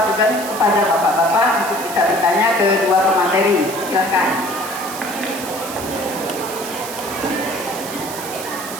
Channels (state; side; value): noise; right; hiss, 10 dB below the sound